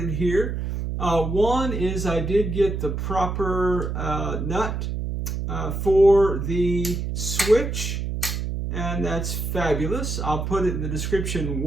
here. One is I did get the proper nut for the switch, and that's fabulous. I'll put it in the description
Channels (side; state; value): right; noise; hum, 3 dB below the sound